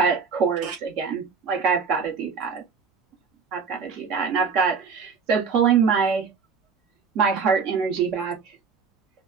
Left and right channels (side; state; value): left; quieter; 5.5 dB